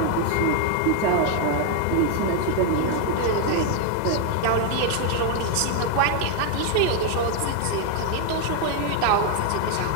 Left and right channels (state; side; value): different; both; correlation 0.01